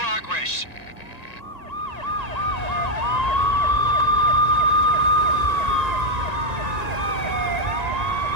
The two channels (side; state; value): right; late; 1.9 ms